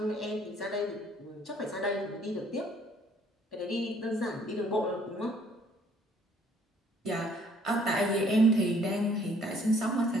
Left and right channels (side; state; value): both; normal; correlation 0.62